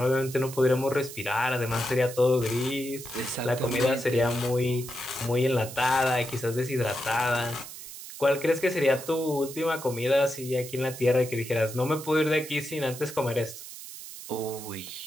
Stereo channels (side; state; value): right; noise; hiss, 12 dB below the sound